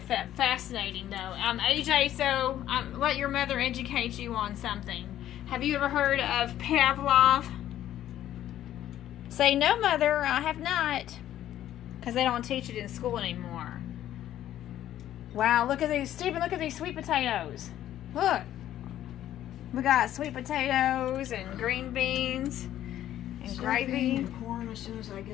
fascinating, though. AJ, so let your mother educate you on something. Have you ever heard of Pavlov? Say no, mother. I have not, because they don't teach it in school anymore. Wow, look at these, Stephen. Look at these sweet potatoes. Look, we got sweet potatoes and green beans and Stuffing gravy. and corn as soon as I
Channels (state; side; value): quieter; right; 12.2 dB